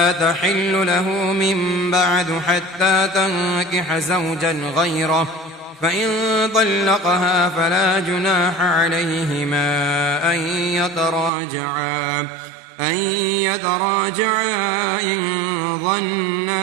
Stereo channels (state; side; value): drops out; left; at 11.3 s